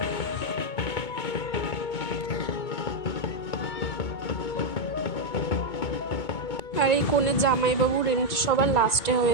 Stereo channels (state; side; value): late; right; 2.2 ms